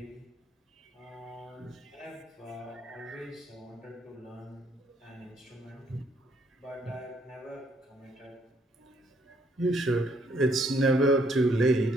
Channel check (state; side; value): normal; both; correlation 0.68